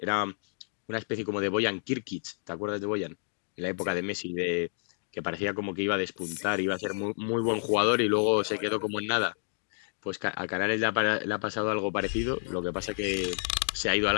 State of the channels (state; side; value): silent; right; 58 dB below the other